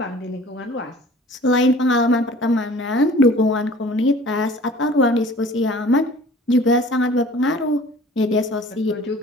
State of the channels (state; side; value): normal; both; correlation 0.48